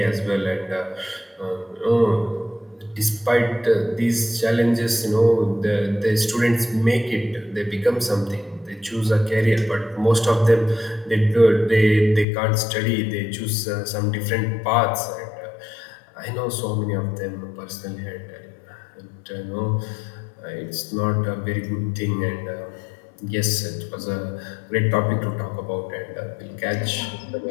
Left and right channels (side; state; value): right; drops out; at 12.2 s